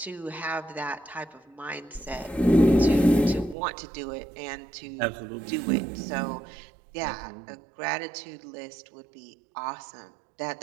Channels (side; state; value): left; drops out; at 3.6 s